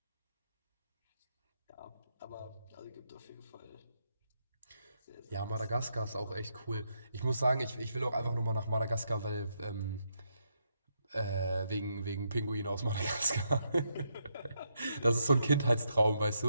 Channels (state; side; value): inverted; both; correlation -0.80